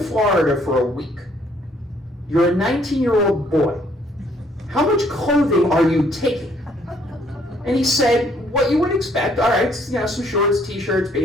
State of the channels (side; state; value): both; normal; correlation 0.65